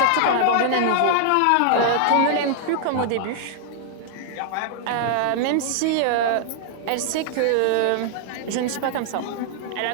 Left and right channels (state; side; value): different; both; correlation -0.01